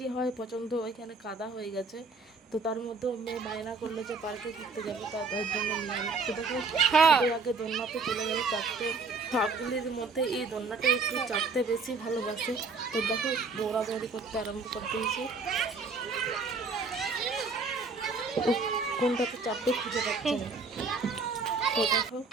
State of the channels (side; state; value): left; quieter; 4.1 dB